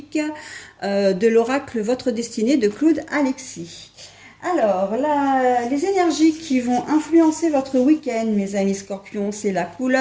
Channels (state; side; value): identical; both; correlation 1.00